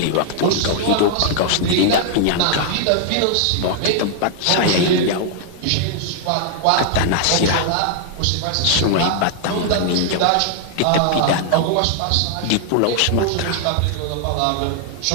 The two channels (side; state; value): both; different; correlation 0.00